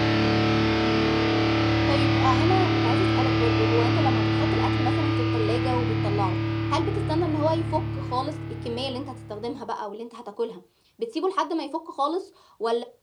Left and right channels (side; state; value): both; identical; correlation 1.00